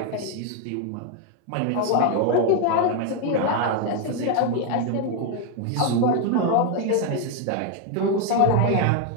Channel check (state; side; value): different; both; correlation 0.01